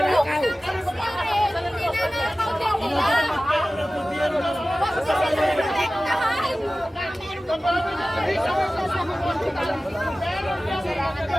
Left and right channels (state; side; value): normal; both; correlation 0.96